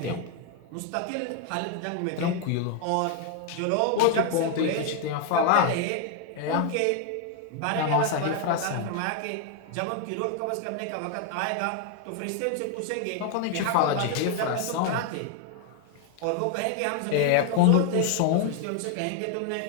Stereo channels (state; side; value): different; both; correlation 0.00